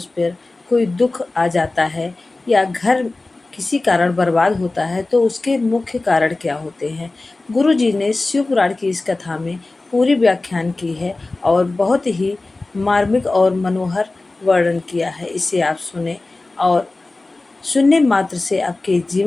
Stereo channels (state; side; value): quieter; right; 3.2 dB